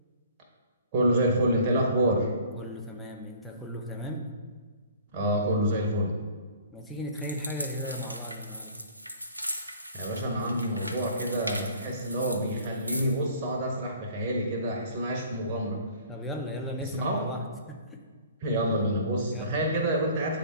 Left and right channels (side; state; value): both; inverted; correlation -0.50